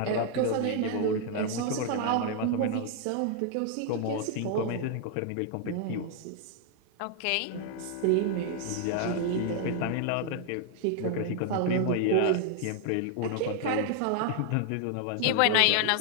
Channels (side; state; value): both; different; correlation 0.00